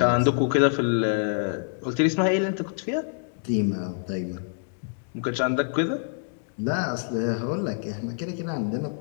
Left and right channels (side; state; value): right; silent; digital silence